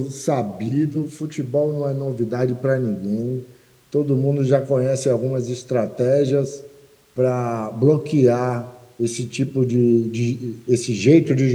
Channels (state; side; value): identical; both; correlation 1.00